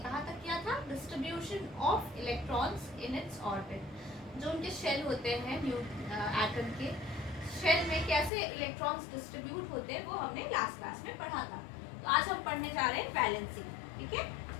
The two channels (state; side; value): drops out; right; at 8.3 s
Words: कहा तक किया था distribution of electrons in its orbit. जो उनके शेल होते हैं एटम के शेल में कैसे इलेक्ट्रॉन्स डिस्ट्रीब्यूट होते हैं वो हमने लास्ट क्लास में पढ़ा था। तो आज हम पढ़ने जा रहे हैं वैलेंसी। ठीक है,